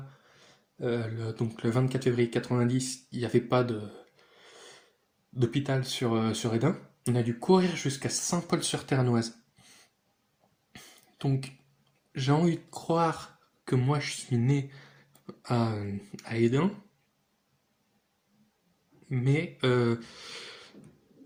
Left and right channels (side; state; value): both; identical; correlation 1.00